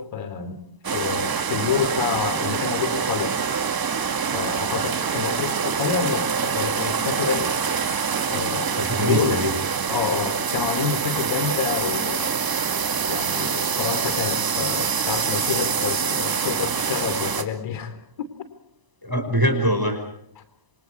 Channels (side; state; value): left; late; 1.0 ms